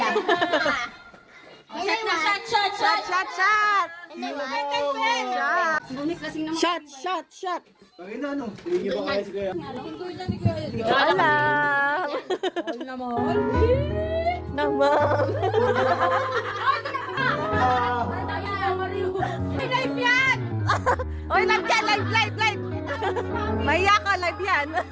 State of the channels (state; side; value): identical; both; correlation 1.00